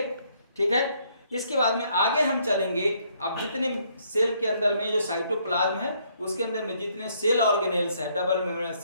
ठीक है। इसके बाद में आगे हम चलेंगे। अब जितने सेल के अंदर में जो साइटोप्लाज्म है उसके अंदर में जितने सेल ऑर्गेनेल्स है, डबल मेम्ब्रेनस,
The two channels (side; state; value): both; inverted; correlation -0.68